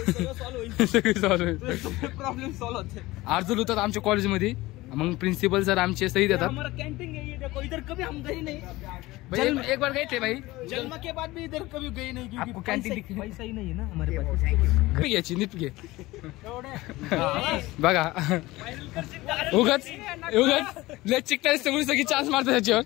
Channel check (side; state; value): right; quieter; 19.3 dB